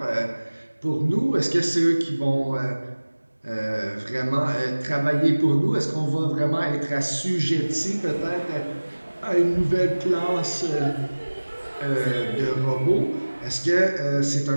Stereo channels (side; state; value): both; inverted; correlation -1.00